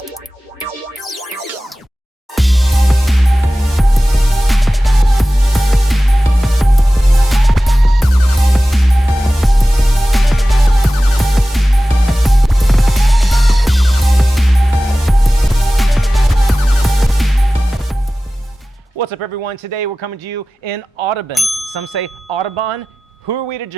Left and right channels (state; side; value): normal; both; correlation 0.96